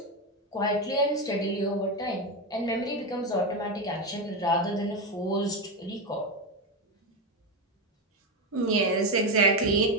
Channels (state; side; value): normal; both; correlation 0.12